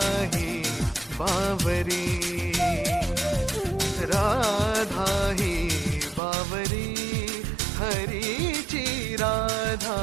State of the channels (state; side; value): drops out; left; at 6.2 s